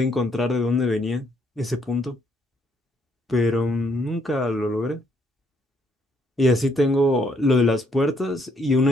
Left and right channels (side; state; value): both; normal; correlation 0.70